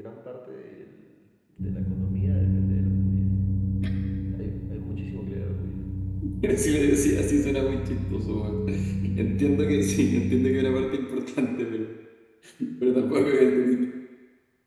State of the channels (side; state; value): both; identical; correlation 1.00